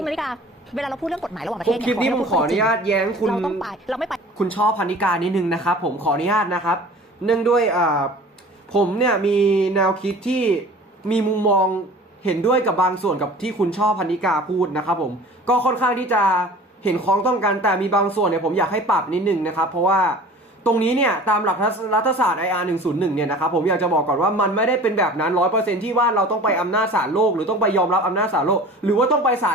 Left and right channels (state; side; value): normal; both; correlation 0.43